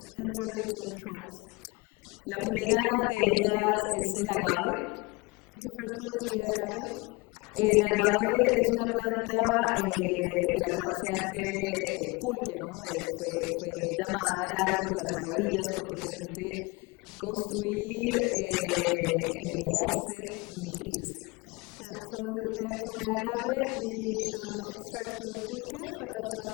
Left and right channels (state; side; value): quieter; right; 25.9 dB